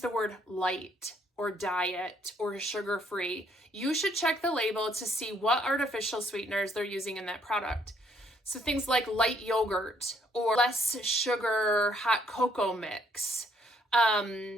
word light or diet or sugar-free, you should check the label to see what artificial sweeteners they're using in that product. So things like light yogurt or less sugar hot cocoa mix,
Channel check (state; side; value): normal; both; correlation 0.67